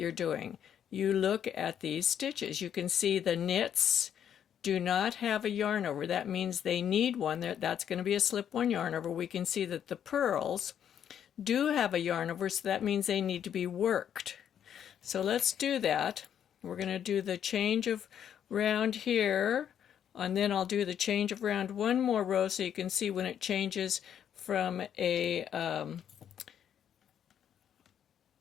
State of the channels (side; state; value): right; quieter; 9.2 dB